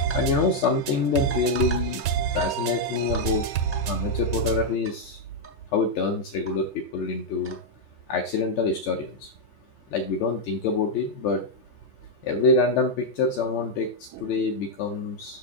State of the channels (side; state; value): right; late; 3.2 ms